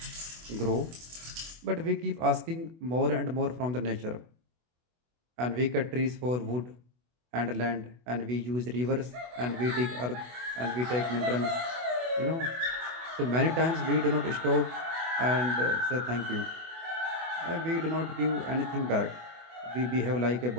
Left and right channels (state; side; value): late; left; 24 ms